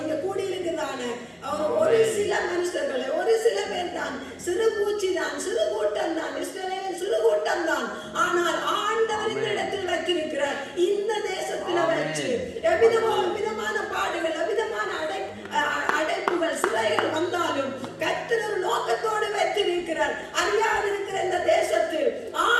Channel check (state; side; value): identical; both; correlation 1.00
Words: இங்க கூடியிருக்கிறதான ஒரு சில மனுஷர்களை, ஒரு சில பேர் தான், சிறு பூச்சி தான், சிறு கூட்டம் தான், சிறு கூட்டம் தான். ஆனால் ஆண்டவர் இந்த இடத்தில் வைத்திருக்கிறார். இந்த தேசத்தில் வச்சு எவ்விதமான பாடுகள், எவ்விதமான அடைப்புகள், சிறைகள் வந்தாலும் கர்த்தர் ஒரு நோக்கத்தோடு வைத்திருக்கிறார். அறியாதிருக்கிற இந்த தேசத்தில்